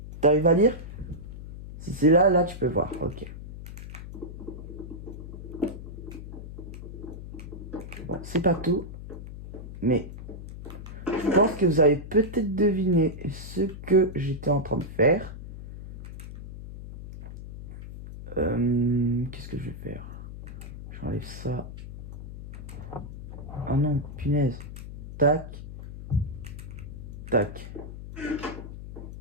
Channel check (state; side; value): noise; left; hum, 11 dB below the sound